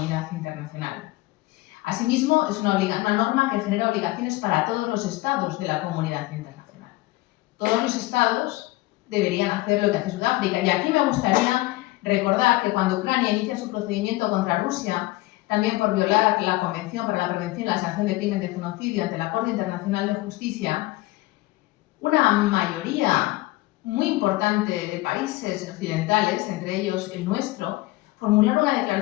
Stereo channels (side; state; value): right; quieter; 19.8 dB